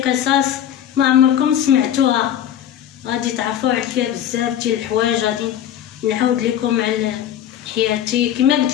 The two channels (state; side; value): quieter; right; 10.4 dB